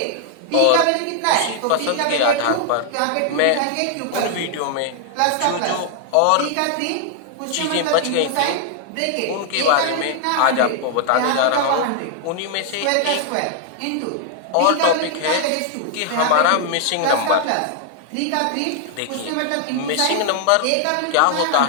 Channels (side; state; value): both; different; correlation 0.00